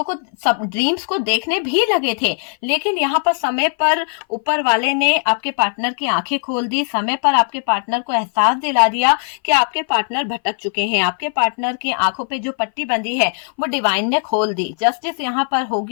को, सब ड्रीम्स को देखने भी लगे थे, लेकिन यहाँ पर समय पर ऊपर वाले ने आपके पार्टनर की आंखें खोल दी, समय पर आपके पार्टनर को एहसास दिला दिया कि आपके पार्टनर भटक चुके हैं। आपके पार्टनर की आंखों पे जो पट्टी बंधी है वो डिवाइन ने खोल दी। जस्टिस यहाँ पर हो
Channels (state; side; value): silent; right; 59 dB below the other